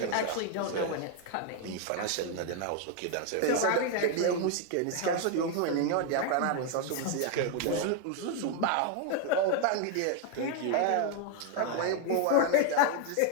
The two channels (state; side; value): different; both; correlation 0.01